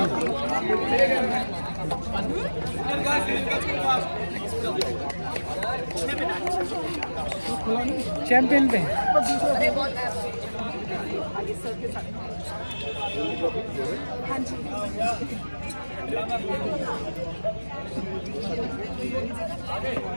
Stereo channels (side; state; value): both; inverted; correlation -1.00